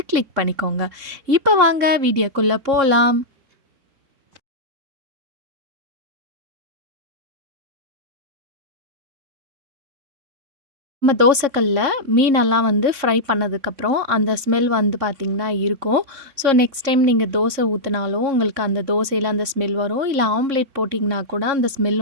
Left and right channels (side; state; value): left; late; 3.6 ms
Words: கிளிக் பண்ணிக்கோங்க. இப்போ வாங்க வீடியோக்குள்ளே போகலாம். நம்ம தோசைக்கல்ல மீனெல்லாம் வந்து ஃப்ரை பண்ணதுக்கப்புறம் அந்த ஸ்மெல் வந்து பார்த்திங்கன்னா இருக்கும். ஸோ நெக்ஸ்ட் டைம் நீங்கள் தோசை ஊற்றினாலும் உங்களுக்கு அந்த தோசையில் அந்த ஸ்மெல் வரும். இல்லை ஆம்லேட் போட்டிங்கன்னா கூட அந்த ஸ்மெல்